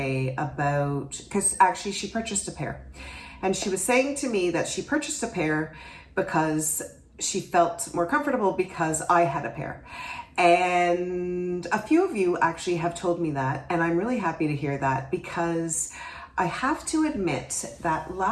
about, because actually she purchased a pair. And she was saying to me that she purchased a pair because she felt more comfortable because I had a pair. And a few of you actually have told me that, and I'm really happy to hear that, because I have to admit that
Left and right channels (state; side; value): identical; both; correlation 1.00